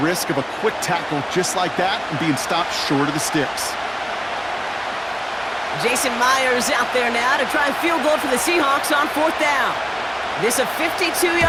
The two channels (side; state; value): both; identical; correlation 1.00